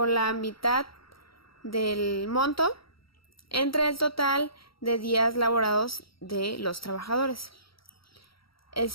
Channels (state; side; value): late; right; 0.75 ms